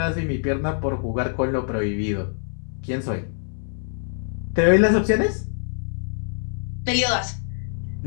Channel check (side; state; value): right; silent; 62 dB below the other